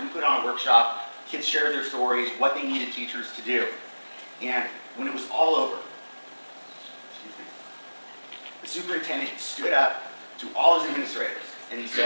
put on a workshop. Kids shared their stories, what they needed teachers to do. And when it was all over, the superintendent stood up to all his administrators and he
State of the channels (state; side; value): inverted; both; correlation -1.00